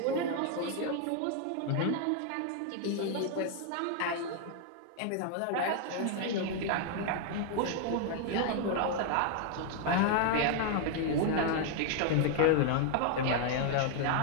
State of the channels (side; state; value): both; different; correlation 0.00